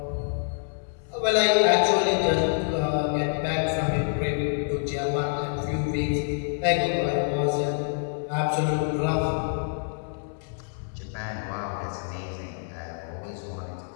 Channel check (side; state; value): right; silent; 58 dB below the other